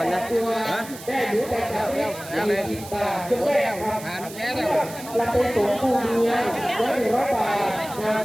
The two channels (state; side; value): noise; right; hiss, 15 dB below the sound